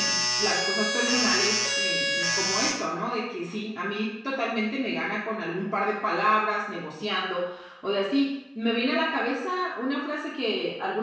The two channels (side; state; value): both; identical; correlation 1.00